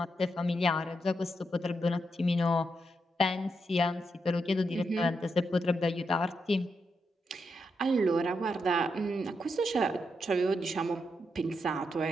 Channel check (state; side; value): normal; both; correlation 0.83